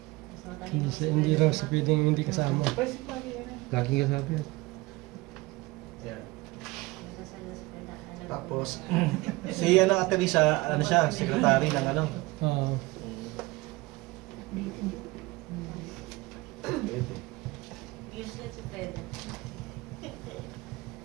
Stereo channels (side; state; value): left; quieter; 21.9 dB